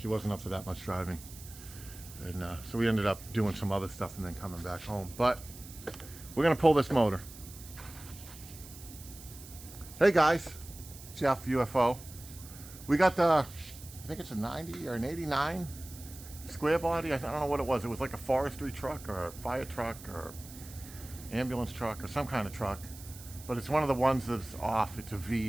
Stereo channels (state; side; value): noise; right; hiss, 16 dB below the sound